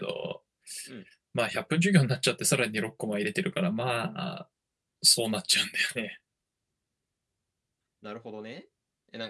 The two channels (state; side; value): identical; both; correlation 1.00